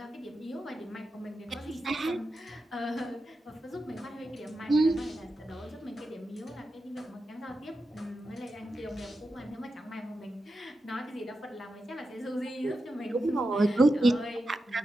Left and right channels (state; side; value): normal; both; correlation 0.90